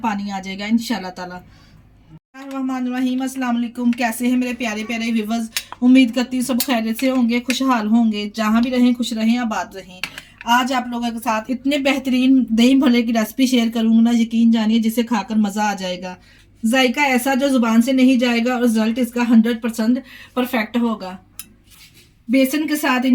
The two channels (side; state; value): both; identical; correlation 1.00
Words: आ जाएगा इंशाल्लाह ताला। रहीम अस्सलाम वालेकुम। कैसे हैं मेरे प्यारे प्यारे व्यूवर्स। उम्मीद करती हूँ सब खैरियत से होंगे, खुशहाल होंगे, जहाँ भी रहें खुश रहें, आबाद रहें। आज आप लोगों के साथ इतने बेहतरीन दही भल्ले की रेसिपी शेयर करूँगी ना, यकीन जानिए जिसे खाकर मज़ा आ जाएगा। जायका ऐसा जो जुबान से नहीं जाएगा और रिजल्ट इसका 100% परफेक्ट होगा। बेसन के साथ